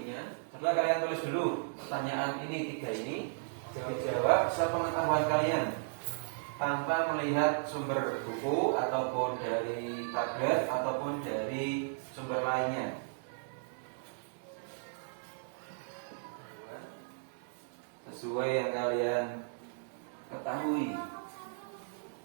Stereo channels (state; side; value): silent; left; digital silence